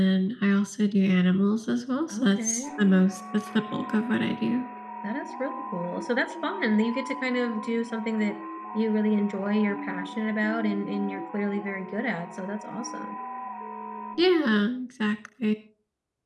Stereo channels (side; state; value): both; identical; correlation 1.00